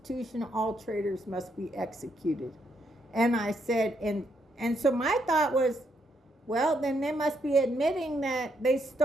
all traitors must be executed. And I said, and so my thought was, well, then they must be admitting that they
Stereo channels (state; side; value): normal; both; correlation 0.76